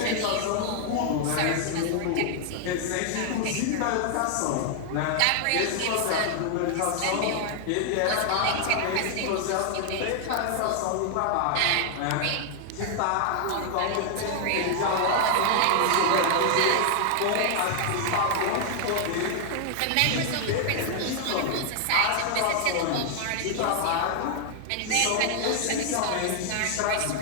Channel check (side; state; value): both; different; correlation 0.00